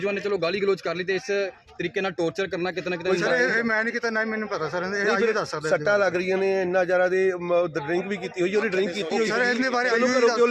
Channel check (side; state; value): both; identical; correlation 1.00